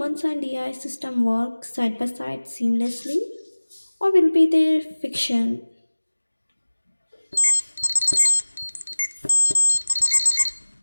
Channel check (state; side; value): inverted; both; correlation -1.00